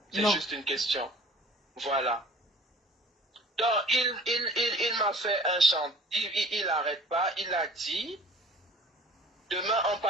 C'est juste une question. Voilà. Donc, il m'a fait un chant. Il n'arrête pas. Il a dit, demain on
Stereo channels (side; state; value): both; normal; correlation 0.48